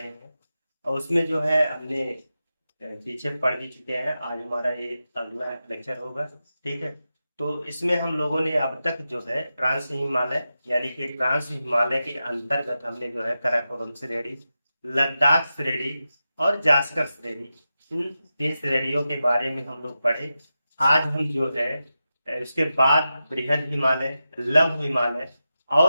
हैं और उसमें जो है हमने पीछे पढ़ भी चुके हैं। आज हमारा ये अगला लेक्चर होगा, ठीक है। तो इसमें हम लोगों ने अब तक जो है ट्रांस हिमालय यानी कि ट्रांस हिमालय के अंतर्गत हमने जो है काराकोरम श्रेणी, लद्दाख श्रेणी और जास्कर श्रेणी, इन तीन श्रेणियों के बारे में हम लोग पढ़े। आज हम जो है उसके बाद बृहद हिमालय, लघु हिमालय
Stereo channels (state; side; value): inverted; both; correlation -0.91